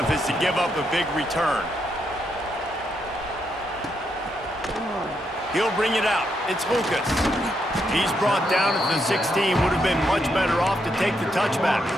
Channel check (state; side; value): normal; both; correlation 0.79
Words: is to give up a big return. He'll bring it out. It's Lucas. He's brought down at the 16. Would have been much better off to take the touchback.